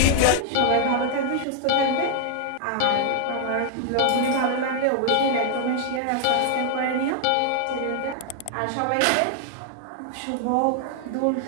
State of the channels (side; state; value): both; different; correlation 0.00